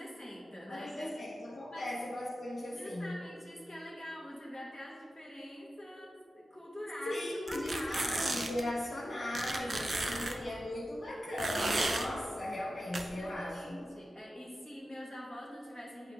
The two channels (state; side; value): normal; both; correlation 0.92